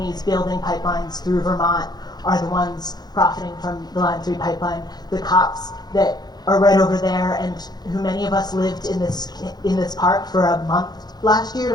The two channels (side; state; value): right; late; 0.19 ms